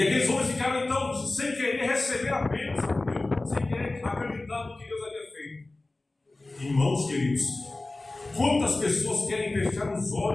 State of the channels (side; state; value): right; quieter; 3.0 dB